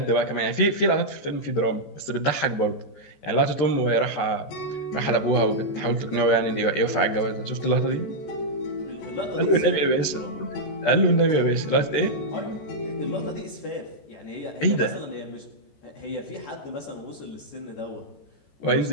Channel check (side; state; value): right; late; 14 ms